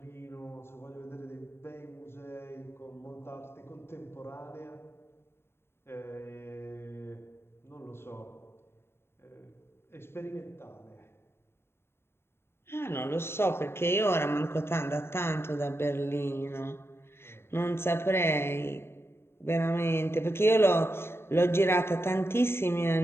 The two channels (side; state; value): right; late; 0.12 ms